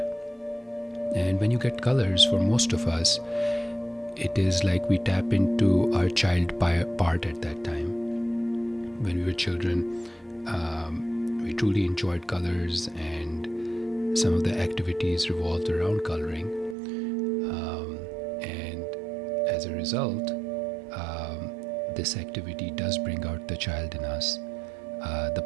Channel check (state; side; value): drops out; left; at 16.8 s